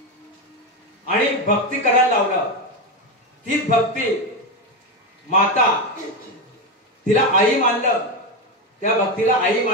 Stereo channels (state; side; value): normal; both; correlation 0.13